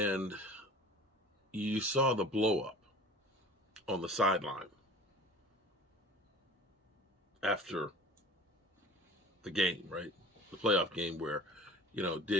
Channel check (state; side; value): normal; both; correlation 0.43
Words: you saw the blow up on the sideline after the game, right? The playoff game where,